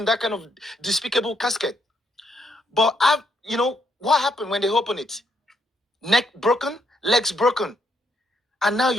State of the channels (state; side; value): normal; both; correlation 0.74